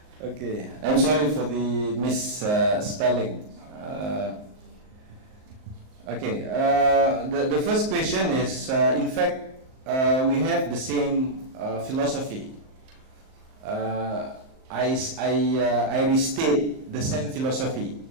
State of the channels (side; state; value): left; late; 38 ms